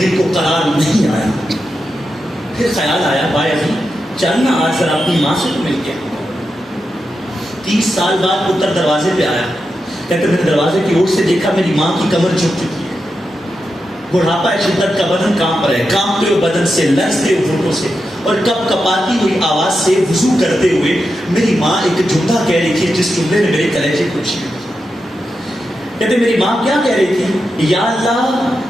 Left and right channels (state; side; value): normal; both; correlation 0.88